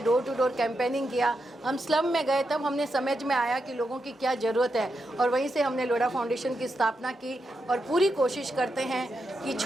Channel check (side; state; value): both; normal; correlation 0.85